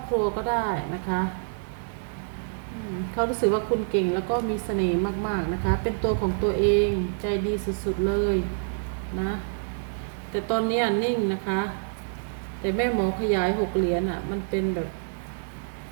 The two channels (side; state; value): left; silent; digital silence